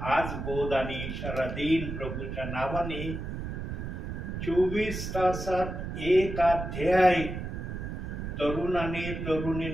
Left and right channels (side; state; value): right; noise; rumble, 6 dB below the sound